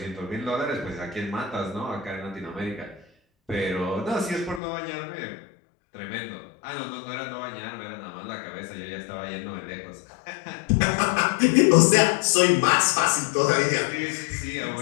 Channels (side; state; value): right; drops out; at 4.6 s